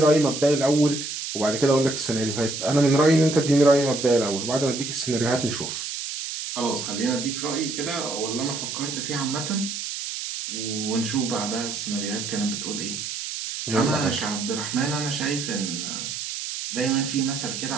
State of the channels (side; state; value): right; noise; hiss, 6 dB below the sound